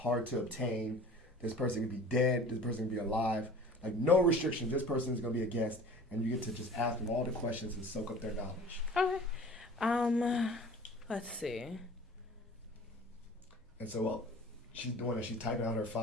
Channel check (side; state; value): both; normal; correlation 0.43